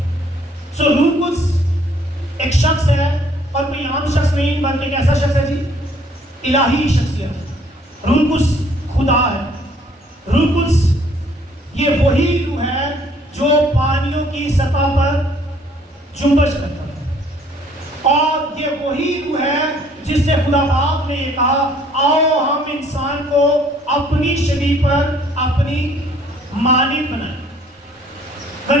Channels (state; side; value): normal; both; correlation 0.61